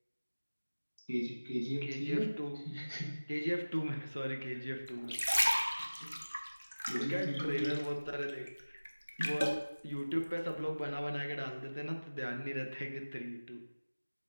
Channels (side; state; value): both; inverted; correlation -1.00